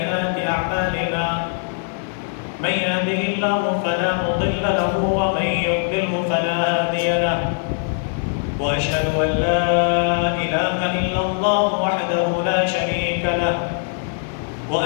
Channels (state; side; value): silent; right; digital silence